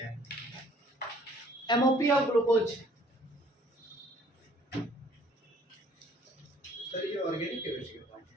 MOP of glucose. Sir ये ऑर्गेनिक केमिस्ट्री का पार्ट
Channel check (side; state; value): both; normal; correlation 0.58